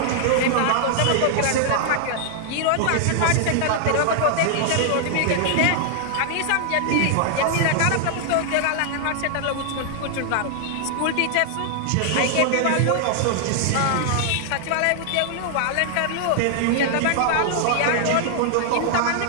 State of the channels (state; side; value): different; both; correlation 0.00